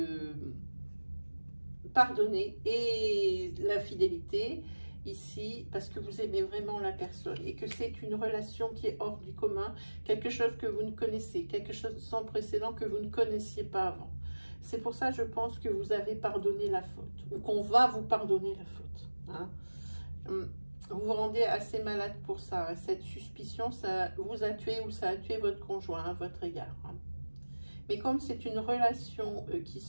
pardonné et l'infidélité, ici, parce que vous aimez vraiment la personne et que c'est une relation qui est hors du commun, quelque chose que vous ne connaissez, quelque chose sans précédent que vous ne connaissiez pas avant. C'est pour ça, je pense, que vous avez pardonné la faute, ou qu'on va vous pardonner la faute. Hein. Vous vous rendez assez malade pour ça. Cette suspicion, ça vous a tué ou ça a tué votre conjoint à votre égard. Hein. Mais comme c'est une relation qui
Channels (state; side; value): inverted; both; correlation -1.00